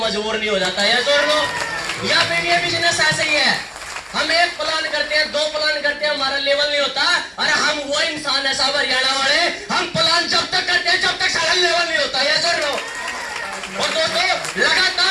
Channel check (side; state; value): both; identical; correlation 1.00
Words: नहीं हो जाता है। जोड़ लो। या फिर ये बिजनेस ऐसे ही है। हम एक प्लान करते हैं, 2 प्लान करते हैं, हमारा लेवल नहीं होता। अरे हम वो इंसान है साहब हरियाणा वाले, हम प्लान जब तक करते हैं जब तक सारा लेवल नहीं होता है। जोड़ लो। और दोस्तों